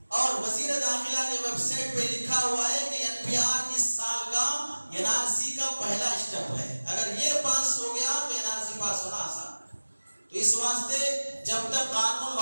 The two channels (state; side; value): inverted; both; correlation -1.00